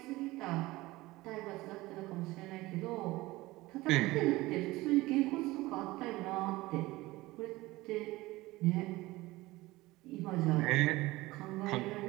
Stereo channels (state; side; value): quieter; left; 19.4 dB